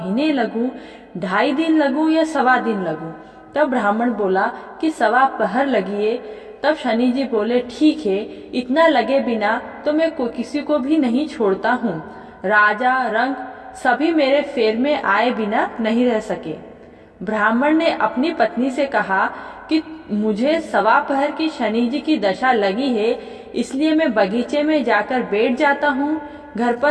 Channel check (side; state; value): both; identical; correlation 1.00